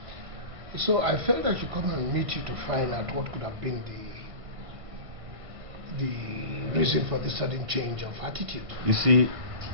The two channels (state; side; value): late; left; 1.5 ms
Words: So I felt I should come and meet you to find out what could have been the reason for this sudden change of attitude. You see,